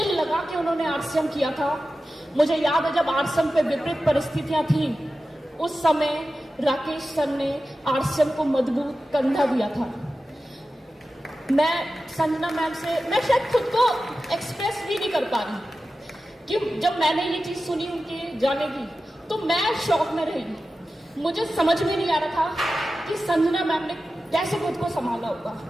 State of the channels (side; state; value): both; normal; correlation 0.94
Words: लगा के उन्होंने आरसीएम किया था। मुझे याद है जब आरसीएम पे विपरीत परिस्थितियां थी, उस समय राकेश सर ने आरसीएम को मजबूत कंधा दिया था। मैं संजना मैम से, मैं शायद खुद को एक्सप्रेस भी नहीं कर पा रही कि जब मैंने ये चीज सुनी उनके जाने की, तो मैं शॉक में रही। मुझे समझ में नहीं आ रहा था कि संजना मैम ने कैसे खुद को संभाला होगा।